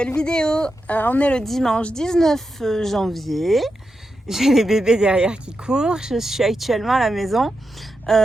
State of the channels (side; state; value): both; normal; correlation 0.88